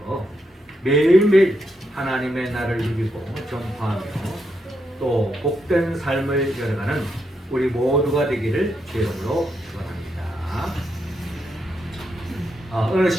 매일매일 하나님의 날을 누리고 전파하며 또 복된 삶을 열어가는 우리 모두가 되기를 주의 이름으로 축원합니다. 어느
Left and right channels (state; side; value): normal; both; correlation 0.81